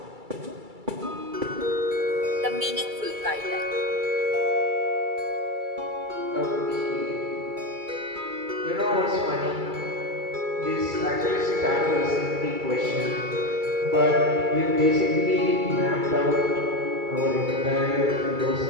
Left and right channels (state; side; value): late; left; 2.3 ms